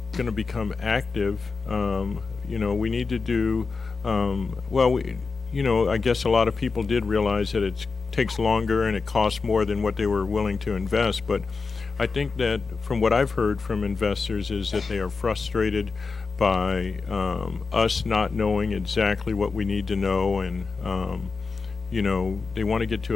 going to become active. We need to do I guess a lot of people did realize that it takes longer and it costs more than what they were willing to invest, but I think that from what I've heard from investors is that they are frustrated by us not knowing exactly what we need to know, and they want to get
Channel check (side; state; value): right; quieter; 4.5 dB